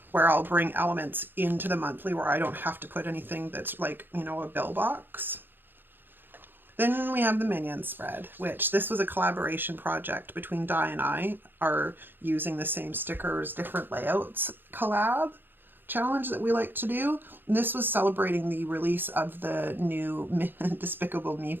where I'll bring elements into the monthly where I don't have to put anything that's like, you know, a bill box. Then we have the Minion spread, which this was a collaboration project between Di and I, are using the same stickers, different layouts collab challenge that we like to do. And this was celebrating the release of the new Despicable Me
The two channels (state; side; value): late; left; 0.097 ms